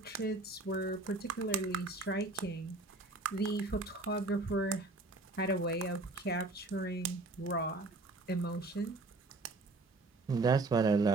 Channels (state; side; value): quieter; left; 3.2 dB